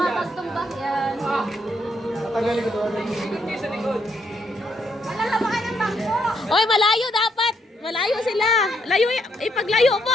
magtumbak yan. Tatagalin ko doon. Ikot kayo sa likod. Malalabakan ng bangko. Oy, malayo dapat. Malayo sila. Layo, ipaglayo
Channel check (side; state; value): both; normal; correlation 0.75